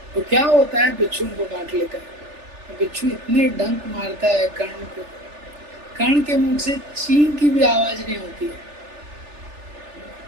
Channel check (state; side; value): late; left; 3.4 ms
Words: तो क्या होता है, बिच्छू उनको काट लेता है। बिच्छू इतने डंक मारता है कर्ण को, कर्ण के मुंह से चीं की भी आवाज नहीं होती है।